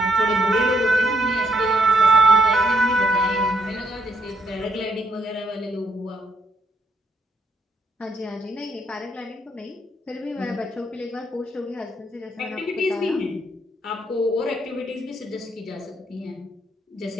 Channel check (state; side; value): normal; both; correlation 0.72